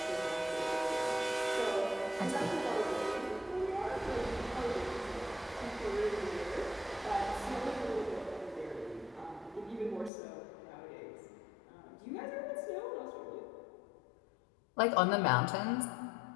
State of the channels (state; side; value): drops out; right; at 10.1 s